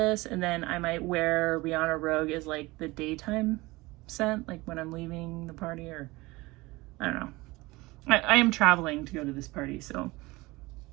and then I might wear Rihanna Rogue as like the daytime scent, like when I'm leaving the party, or I don't know. I am traveling to go to this party, so.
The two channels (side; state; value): left; quieter; 21.7 dB